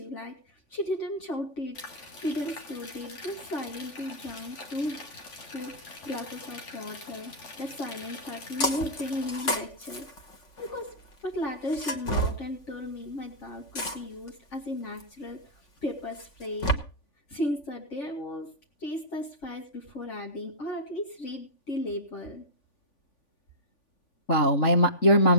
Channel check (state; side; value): late; right; 3.5 ms